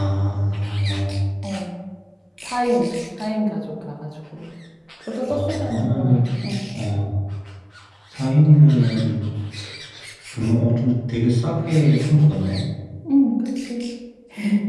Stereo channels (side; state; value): both; identical; correlation 1.00